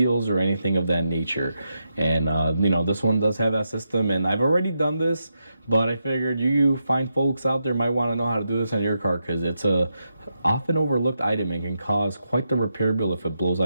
or anything of that nature. And this one does have that system, and I've already done this, but I figured you fine folks out there might want to know how to do this on your car because it's a often overlooked item and can cause quite the repair bill if it blows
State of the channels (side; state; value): both; inverted; correlation -0.85